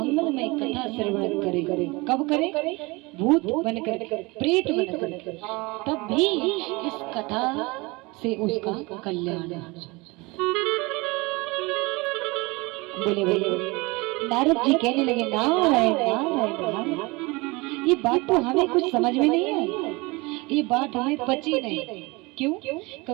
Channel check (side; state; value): left; quieter; 24.8 dB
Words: कथा श्रवण करे, कब करे? भूत बनकर, प्रेत बनकर, तब भी इस कथा से उसका कल्याण हो जाता। बोले बोले नारद जी कहने लगे, नारायण नारायण नारायण। ये बात तो हमें कुछ समझ में नहीं आई, ये बात हमें पची नहीं। क्यों?